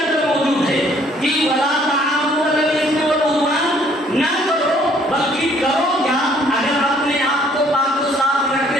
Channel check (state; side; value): normal; both; correlation 0.62